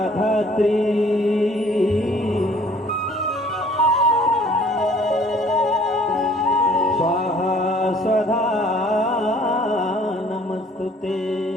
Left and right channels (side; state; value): both; normal; correlation 0.56